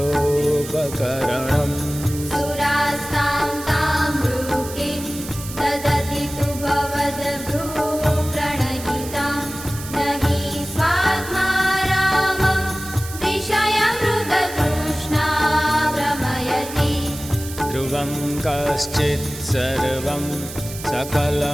सुरास्तां तां भ्रूकिं ददति तु भवद्भ्रूप्रणयितां न हि स्वात्मा रामं विषयमृगतृष्णा भ्रमयति। ध्रुवं कश्चित् सर्वं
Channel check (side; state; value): right; noise; hiss, 12 dB below the sound